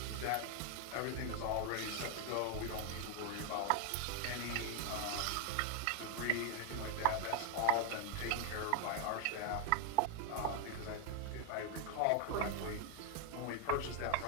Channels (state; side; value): different; both; correlation 0.00